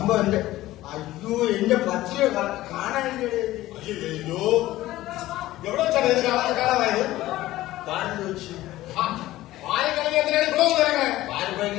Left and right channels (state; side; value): quieter; right; 16.1 dB